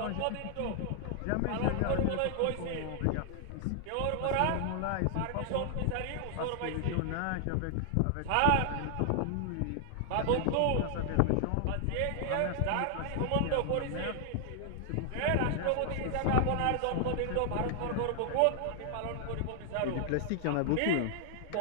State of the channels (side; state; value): both; different; correlation 0.00